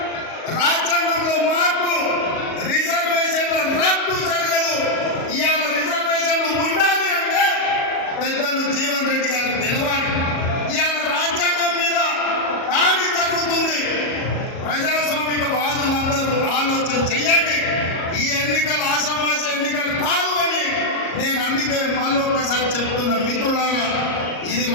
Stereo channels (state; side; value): late; right; 37 ms